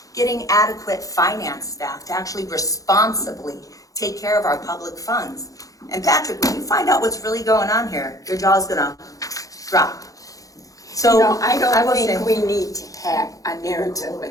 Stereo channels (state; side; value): late; right; 0.17 ms